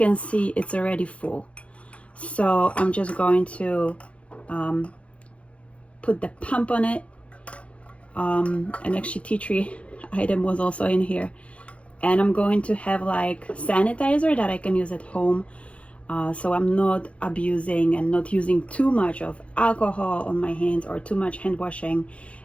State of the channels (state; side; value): late; right; 0.062 ms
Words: see it's already full. So I'm just going to put the pump on it, and actually tea tree item was also in here, and I'm going to have like sanitizer that I can use at home. So I'm not abusing and not using too much of alcohol on my hands or too much hand washing.